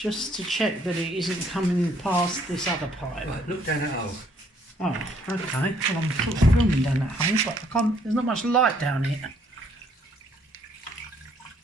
to check that it isn't coming past this other pipe. Right, look down that hole. Oh, okay. Well, I'm sort of filming down that hole, but I can't, there's not much light down here.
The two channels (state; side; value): normal; both; correlation 0.66